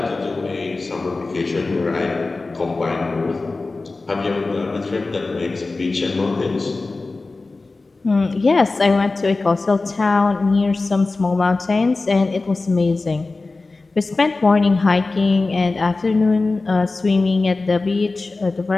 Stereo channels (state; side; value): quieter; right; 3.5 dB